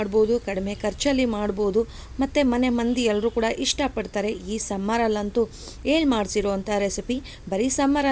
ಕಡಿಮೆ ಖರ್ಚಲ್ಲಿ ಮಾಡ್ಬೋದು, ಮತ್ತು ಮನೆ ಮಂದಿ ಎಲ್ಲರೂ ಕೂಡ ಇಷ್ಟಪಡ್ತಾರೆ. ಈ ಸಮ್ಮರಲ್ಲಂತೂ ಮಾಡಿಸಿರೋ ಅಂಥ ರೆಸಿಪಿ. ಬರೀ ಸಮ್ಮರ್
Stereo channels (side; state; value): both; identical; correlation 1.00